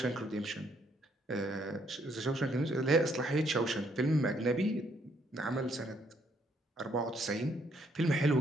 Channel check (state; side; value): normal; both; correlation 0.70